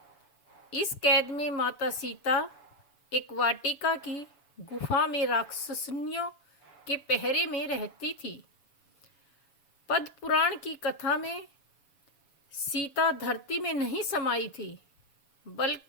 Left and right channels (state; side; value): late; right; 7.1 ms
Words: इस कैद में माता सीता एक वाटिका की गुफा में राक्षसनियों के पहरे में रहती थी। पद्म पुराण की कथा में सीता धरती में नहीं समाई थी,